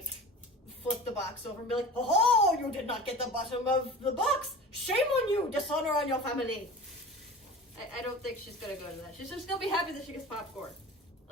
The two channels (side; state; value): both; normal; correlation 0.37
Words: flip the box over and be like, oh, you did not get the bottom of the box. Shame on you, dishonor on your family. I don't think she's gonna go to that. She's just gonna be happy that she gets popcorn.